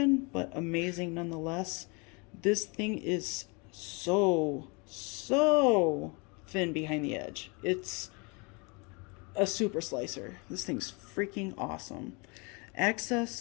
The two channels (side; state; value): right; quieter; 30.3 dB